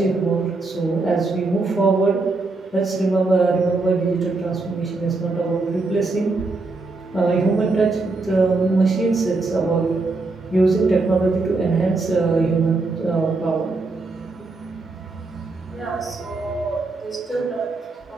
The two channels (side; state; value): left; quieter; 3.5 dB